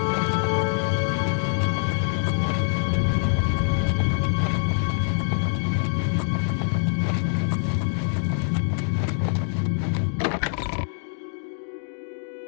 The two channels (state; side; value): silent; right; 60 dB below the other